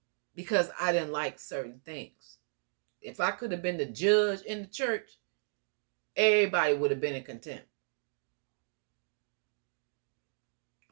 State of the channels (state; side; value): silent; left; digital silence